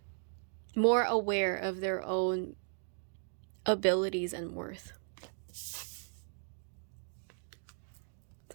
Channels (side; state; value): left; silent; 53 dB below the other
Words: more aware of their own abilities and worth.